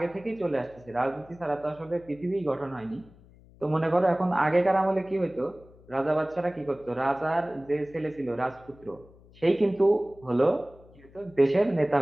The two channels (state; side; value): noise; left; hum, 25 dB below the sound